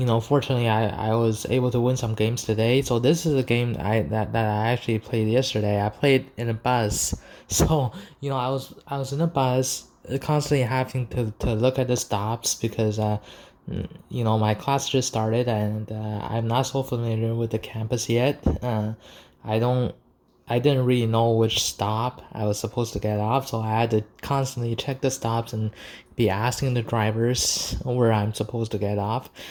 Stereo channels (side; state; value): both; identical; correlation 1.00